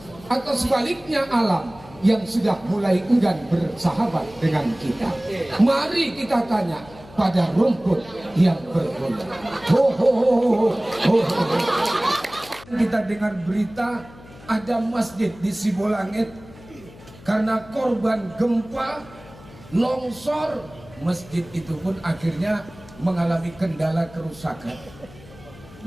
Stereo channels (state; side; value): noise; left; hum, 21 dB below the sound